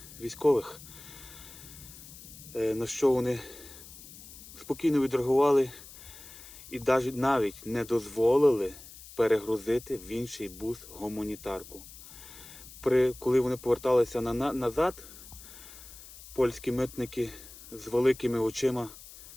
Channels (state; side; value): noise; left; hiss, 17 dB below the sound